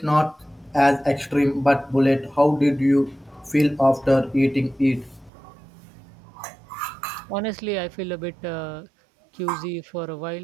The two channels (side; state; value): left; drops out; at 5.3 s